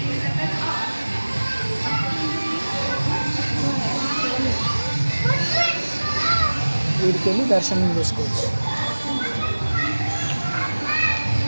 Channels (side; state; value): both; inverted; correlation -1.00